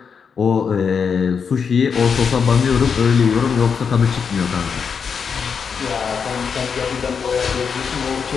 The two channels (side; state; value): right; quieter; 6.2 dB